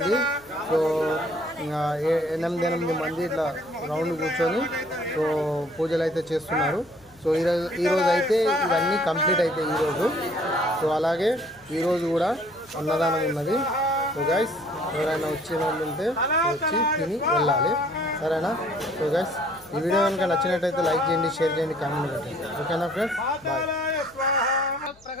సో 8 మంది ఇట్లా రౌండ్ కూర్చొని సో పూజలు అయితే చేస్తున్నారు. సో ఈరోజు అయితే ఇవన్నీ కంప్లీట్ అవుతాయి ఈరోజు. సో అలాగే ఈరోజు కూడా అన్నదానం ఉన్నది. సో గైస్, ఎవరైనా వచ్చిన వాళ్ళు ఉంటే వచ్చి తిని వెళ్ళాలి, సరేనా? సో గైస్, ఈ వీడియో కనుక నచ్చినట్టయితే లైక్ చేయండి, షేర్ చేయండి, కామెంట్ పెట్టండి. ఓకేనా ఫ్రెండ్స్? బాయ్.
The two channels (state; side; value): noise; left; hum, 28 dB below the sound